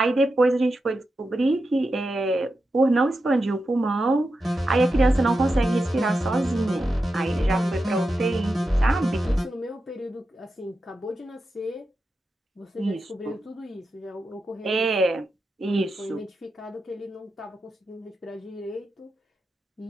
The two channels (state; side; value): normal; both; correlation 0.89